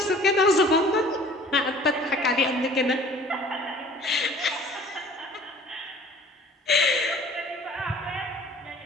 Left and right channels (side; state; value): both; normal; correlation 0.50